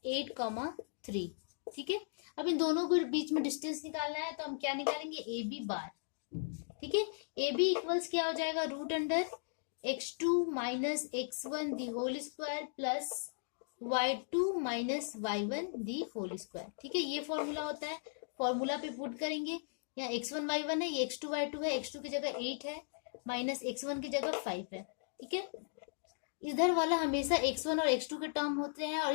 8,3, ठीक है। अब इन दोनों के बीच में डिस्टेंस निकालना है, तो हम क्या निकालेंगे ab बार, ठीक है। ab इक्वल्स क्या हो जाएगा, root under x2 minus x1 the whole square plus y2 minus y1 the whole square, ठीक है। ये फॉर्मूला होता है, फॉर्मूला पे पुट करेंगे, यहाँ x1 y1 है, ये x2 y2 है, x2 की जगह 8 है माइनस x1 की जगह 5 है, ठीक है। इधर वाला हमेशा x1 और x2 के टर्म होते हैं, और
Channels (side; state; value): right; silent; digital silence